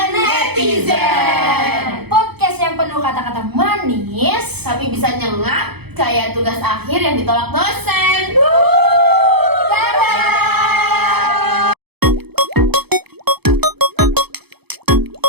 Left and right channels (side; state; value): left; late; 0.98 ms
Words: netizen. Podcast yang penuh kata-kata manis. Tapi bisa nyengat kayak tugas akhir yang ditolak dosen.